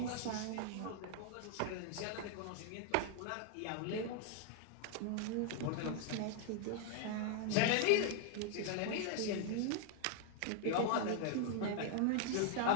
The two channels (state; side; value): different; both; correlation 0.00